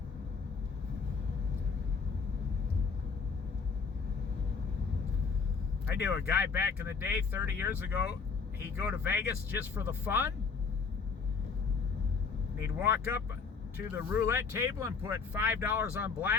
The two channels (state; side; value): quieter; right; 5.2 dB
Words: I knew a guy back in the day, 30 years ago, he'd go to Vegas just for the fun. And he'd walk up to the roulette table and put $5 on